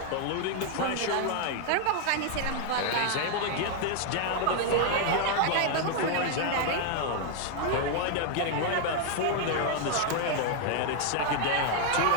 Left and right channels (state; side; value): different; both; correlation 0.00